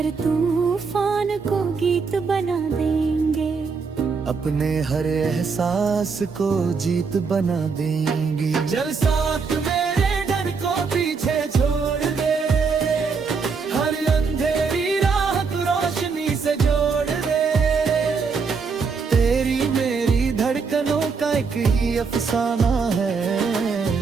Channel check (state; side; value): quieter; left; 5.1 dB